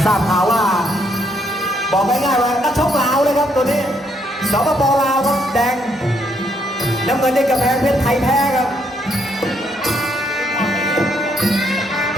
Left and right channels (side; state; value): both; normal; correlation 0.73